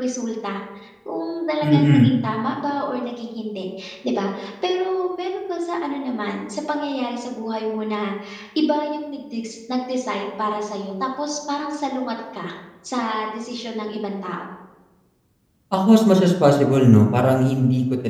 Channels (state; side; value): identical; both; correlation 1.00